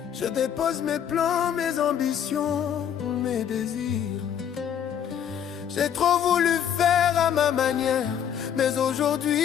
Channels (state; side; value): quieter; right; 9.0 dB